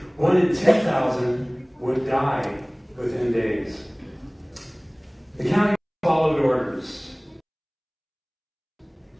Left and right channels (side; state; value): both; identical; correlation 1.00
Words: 1 in 10,000 would die within days. The county followed orders.